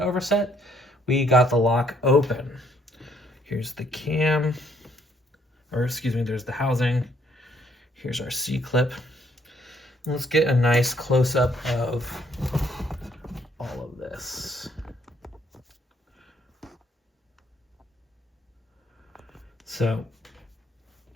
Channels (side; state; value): both; normal; correlation 0.67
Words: overset, we got the lock open. Here's the cam, or excuse me, there's the housing. Here's our C-clip. Let's get a nice close-up of all of this. So